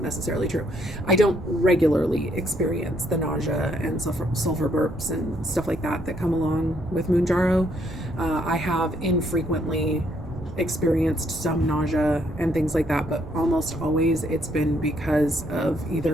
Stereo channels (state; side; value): noise; right; rumble, 13 dB below the sound